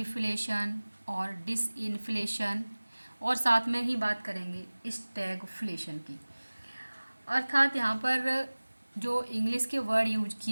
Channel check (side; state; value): both; inverted; correlation -1.00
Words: और डिसइन्फ्लेशन, और साथ में ही बात करेंगे स्टैगफ्लेशन की। अर्थात यहाँ पर जो इंग्लिश के वर्ड यूज